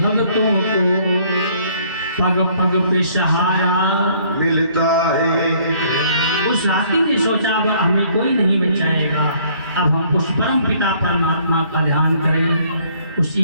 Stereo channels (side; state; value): both; inverted; correlation -0.61